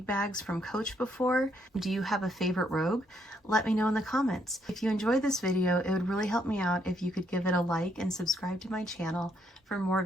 bags from Coach before? Do you have a favorite Rogue? Let me know in the comments. If you enjoyed this video, it would really help me out if you could give it a like and subscribe to my channel for more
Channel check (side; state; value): both; normal; correlation 0.73